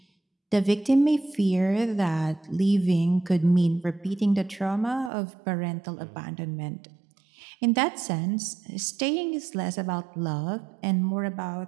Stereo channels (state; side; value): drops out; left; at 5.1 s